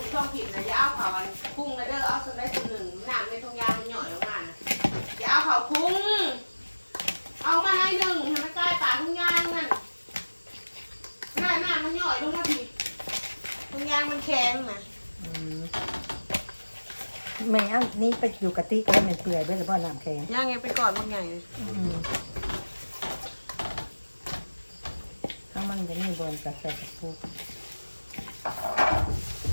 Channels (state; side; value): inverted; both; correlation -1.00